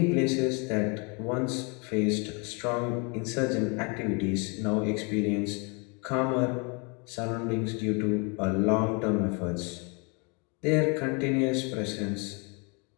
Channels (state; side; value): quieter; right; 32.4 dB